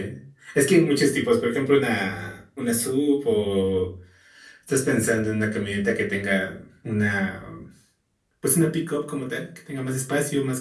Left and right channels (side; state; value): both; identical; correlation 1.00